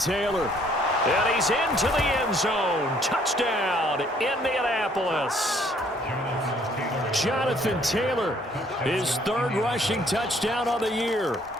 And he's into the end zone. Touchdown, Indianapolis. Jonathan Taylor, his third rushing touchdown of the year.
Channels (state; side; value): normal; both; correlation 0.63